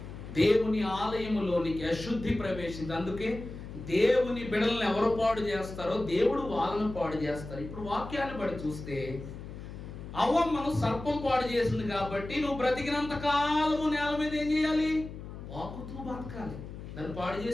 దేవుని ఆలయములోనికి అశుద్ధి ప్రవేశింది. అందుకే దేవుని బిడలను ఎవరు పాడు చేస్తారో దేవుడు వాళ్ళను పాడు చేస్తారు. ఇప్పుడు వాక్యాన్ని బట్టి చూస్తే అవ్వమ్మను సర్పం పాడు చేసింది కాబట్టి నువ్వు బ్రతికినంత కాలము నేల మీద ఏం చేయాలి, వాకుతూ బతకాలి. దాన్ని పాడు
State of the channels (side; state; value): left; noise; hum, 11 dB below the sound